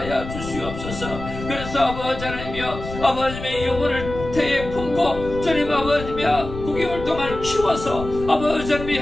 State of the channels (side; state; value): left; noise; rumble, 10 dB below the sound